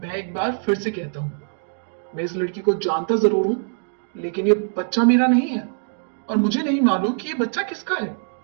एक बार फिर से कहता हूं, मैं इस लड़की को जानता जरूर हूं, लेकिन ये बच्चा मेरा नहीं है और मुझे नहीं मालूम कि ये बच्चा किसका है।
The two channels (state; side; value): silent; left; digital silence